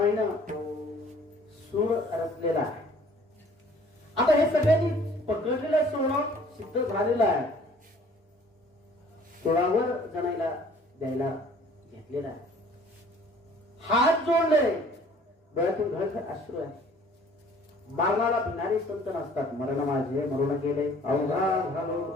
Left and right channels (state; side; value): normal; both; correlation 0.54